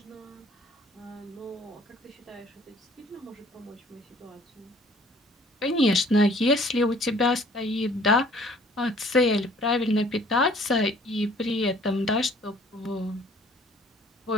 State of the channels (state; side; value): normal; both; correlation 0.55